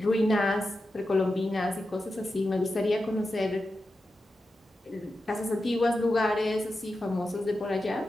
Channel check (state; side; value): normal; both; correlation 0.90